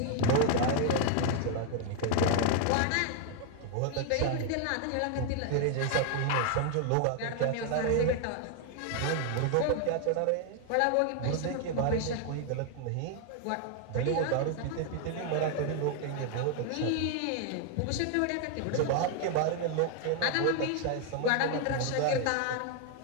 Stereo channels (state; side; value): different; both; correlation 0.00